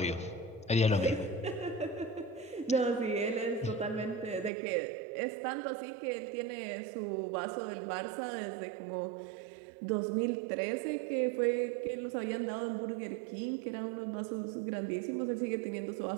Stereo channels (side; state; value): left; drops out; at 4.5 s